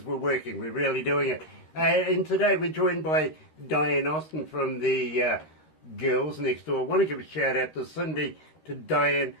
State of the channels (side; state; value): right; late; 13 ms